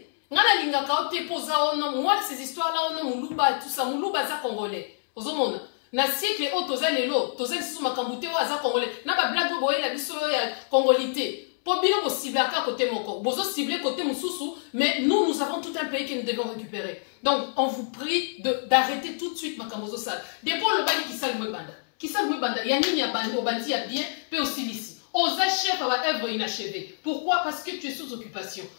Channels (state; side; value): silent; right; 60 dB below the other